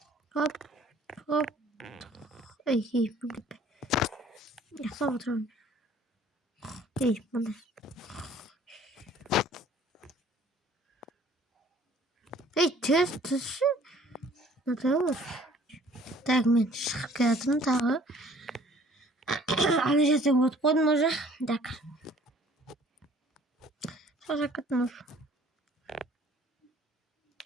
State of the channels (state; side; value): normal; both; correlation 0.55